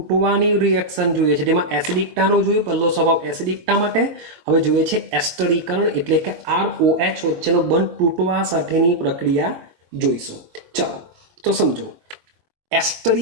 રિએક્શન જોઈએ છે, જેમાં એસિડિકતાનો જોયું, પહેલો સ્વભાવ એસિડિકતા માટે. હવે જોઈએ છે એસ્ટરીકરણ, એટલે કે ROH વચ્ચેનો બંધ તૂટવા સાથેની પ્રક્રિયા જોઈશું. ચાલો તો સમજો,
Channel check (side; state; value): left; late; 22 ms